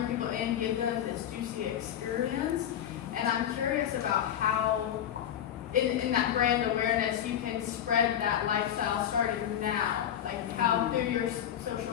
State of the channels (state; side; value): quieter; right; 10.1 dB